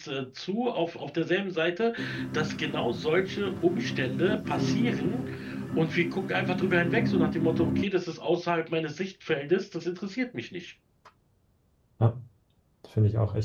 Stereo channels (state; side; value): identical; both; correlation 1.00